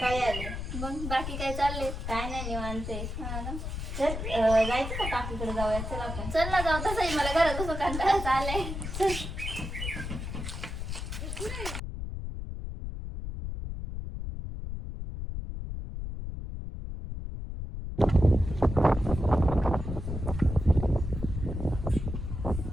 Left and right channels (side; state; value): left; noise; rumble, 5 dB below the sound